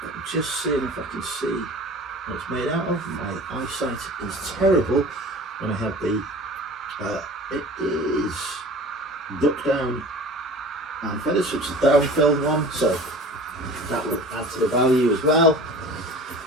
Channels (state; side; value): normal; both; correlation 0.41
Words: just seeing if I can see what it's made out of. My eyesight is terrible when I have the, it is duck down and feathers, which is a down filled one, so that will add to the value as well.